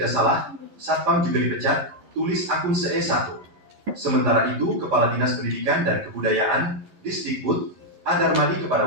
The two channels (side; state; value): left; late; 11 ms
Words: salah, Satpam juga dipecat, tulis akun SE1. Sementara itu, Kepala Dinas Pendidikan dan Kebudayaan, Disdikbud, Adarmadi kepada